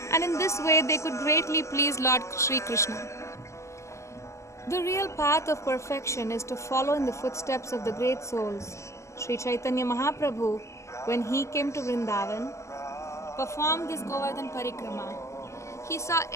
And in this way they could greatly please Lord Sri Krishna. The real path of perfection is to follow in the footsteps of the great souls. Sri Chaitanya Mahaprabhu, when he came to Vrindavan, performed this Govardhan Parikrama. He saw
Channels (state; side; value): late; right; 0.14 ms